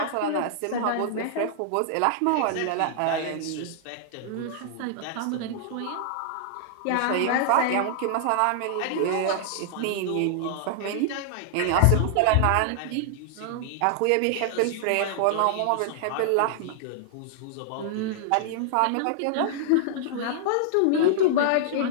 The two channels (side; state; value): both; different; correlation -0.01